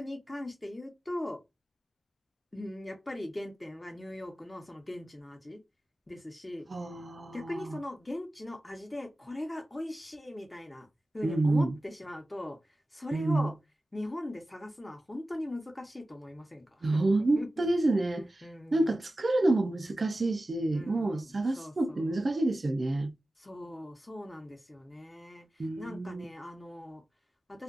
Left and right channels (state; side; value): normal; both; correlation 0.95